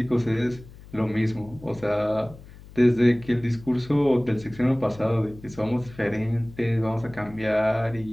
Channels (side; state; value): left; noise; hum, 19 dB below the sound